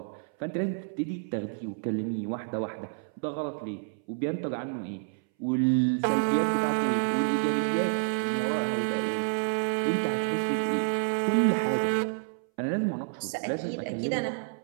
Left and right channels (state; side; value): silent; left; 59 dB below the other